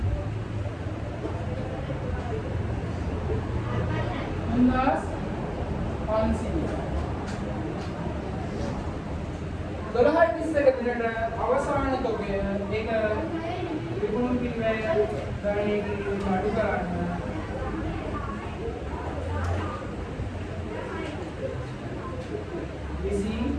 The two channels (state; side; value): identical; both; correlation 1.00